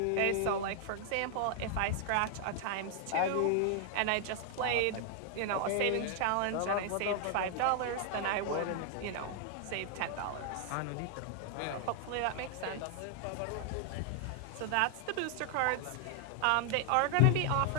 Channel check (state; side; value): different; both; correlation 0.00